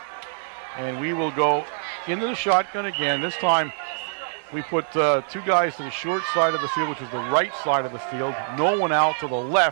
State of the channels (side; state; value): left; silent; digital silence